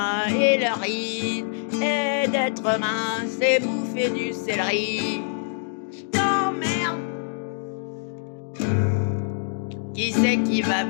et leur ride et d'être mince et bouffer du céleri. Je t'emmerde. Qui c'est qui va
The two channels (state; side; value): silent; right; digital silence